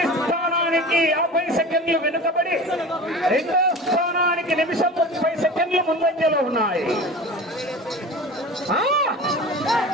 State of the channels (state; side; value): normal; both; correlation 0.35